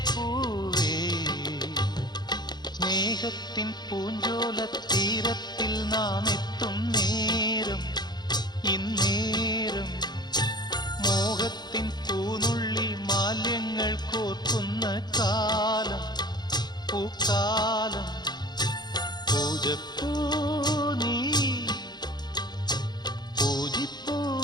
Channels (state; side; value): late; right; 0.21 ms